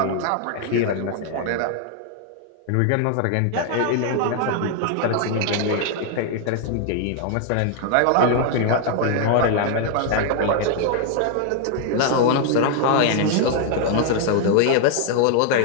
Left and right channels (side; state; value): both; different; correlation 0.00